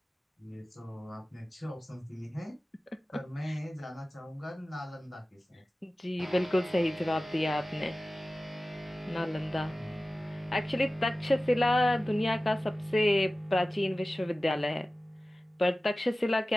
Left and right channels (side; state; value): both; normal; correlation 0.96